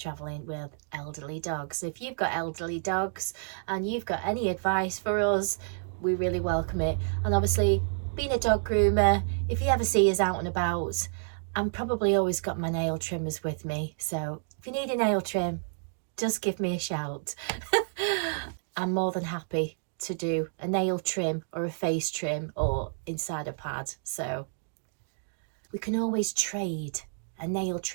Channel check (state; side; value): silent; left; digital silence